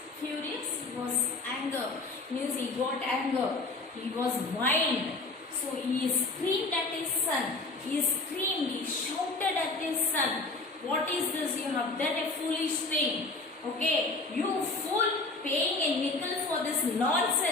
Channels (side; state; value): right; quieter; 3.4 dB